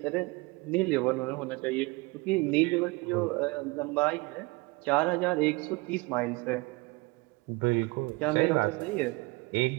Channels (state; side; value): quieter; left; 24.8 dB